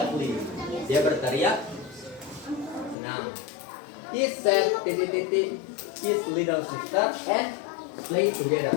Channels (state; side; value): drops out; right; at 3.0 s